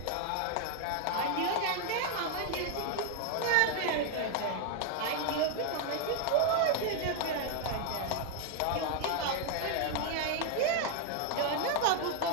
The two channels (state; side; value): different; both; correlation 0.00